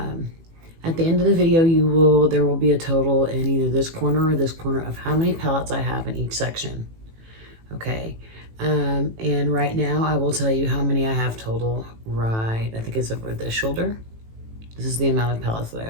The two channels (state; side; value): late; left; 18 ms